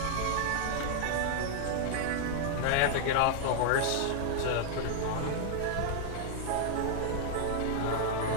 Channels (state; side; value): different; both; correlation 0.00